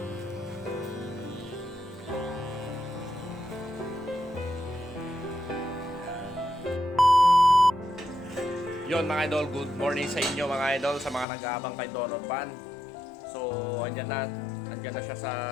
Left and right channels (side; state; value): right; drops out; at 11.2 s